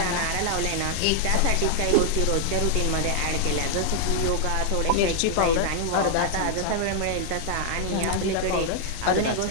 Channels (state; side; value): different; both; correlation 0.00